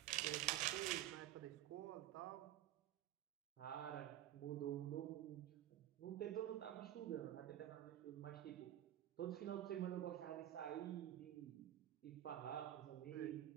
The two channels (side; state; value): left; quieter; 12.7 dB